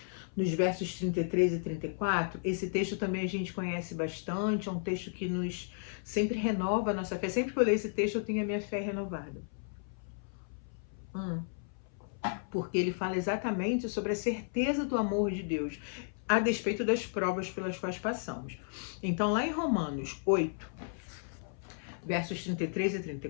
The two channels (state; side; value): silent; right; 55 dB below the other